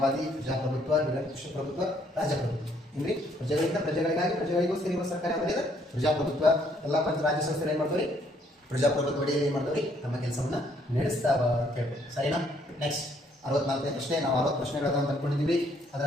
ಪ್ರಜಾಪ್ರಭುತ್ವ, ನಿರಂಕುಶ ಪ್ರಭುತ್ವ, ರಾಜಪ್ರಭುತ್ವ. ಅಂದ್ರೆ ಪ್ರಜೆಗಳಿಂದ ಪ್ರಜೆಗಳಿಗಾಗಿ ಪ್ರಜೆಗಳಿಗೋಸ್ಕರ ಇರುವ ಸರ್ಕಾರ ಯಾವುದು? ಪ್ರಜಾಪ್ರಭುತ್ವ. ಎಲ್ಲ ರಾಜ್ಯ ಸಂಸ್ಥೆಗಳು ಏನ್ ಮಾಡ್ತಾರೆ? ಪ್ರಜಾಪ್ರಭುತ್ವ ಅಡಿಯಲ್ಲಿ ಏನ್ ಮಾಡ್ತಾರೆ? ತಮ್ಮ ಕೆಲಸವನ್ನ ನಡೆಸ್ತಾವ ಅಂತ ಹೇಳ್ಬೋದು. ಸರಿನಾ? ನೆಕ್ಸ್ಟ್ 64ನೇ ಪ್ರಶ್ನೆ. ನಾವು 60 ಪ್ರಶ್ನೆಗಳನ್ನು ತಂದ್ಕೊಂಡಿದ್ದೀವಿ. ಅದರ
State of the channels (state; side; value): normal; both; correlation 0.67